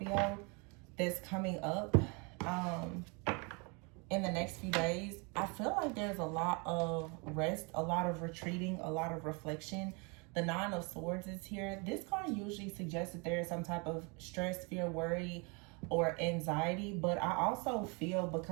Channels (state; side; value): quieter; left; 31.5 dB